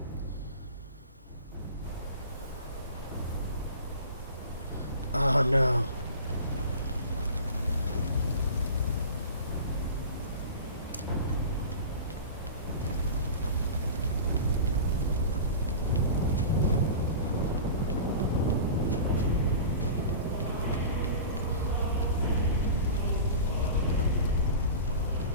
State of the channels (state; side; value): inverted; both; correlation -0.35